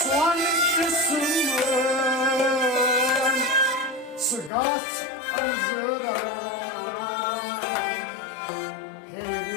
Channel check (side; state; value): right; drops out; at 4.5 s